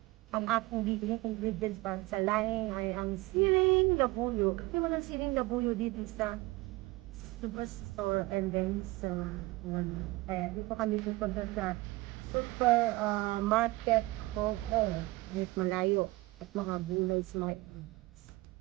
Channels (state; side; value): quieter; left; 21.1 dB